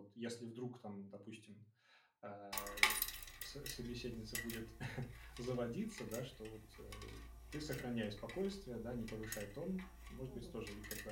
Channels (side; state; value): both; identical; correlation 1.00